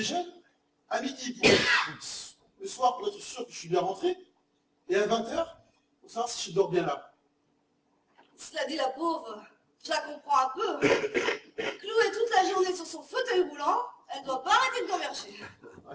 à midi pour le soir pour être sûr que je suis bien rentré, et à 20 heures pour savoir si je dors bien là. Cela dit, la pauvre, je la comprends un peu. Clouée toute la journée sur son fauteuil roulant, elle doit pas arrêter de converger.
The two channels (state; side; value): identical; both; correlation 1.00